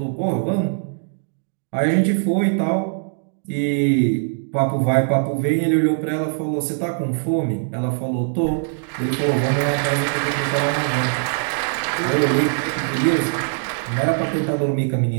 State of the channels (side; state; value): left; silent; digital silence